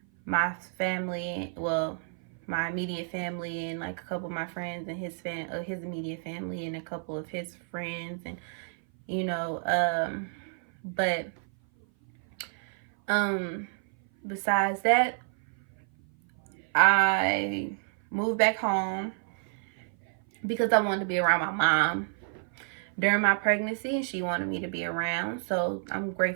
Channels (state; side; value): silent; left; 56 dB below the other